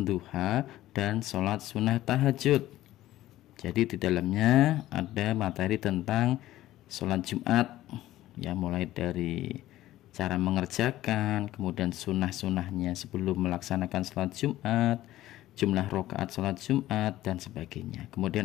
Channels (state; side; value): quieter; right; 14.9 dB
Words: duha, dan sholat sunnah tahajud. Jadi di dalamnya ada materi tentang sholat Jumat, ya, mulai dari cara mengerjakan, kemudian sunnah-sunnahnya sebelum melaksanakan sholat Jumat, jumlah rakaat sholat Jumat, dan sebagainya.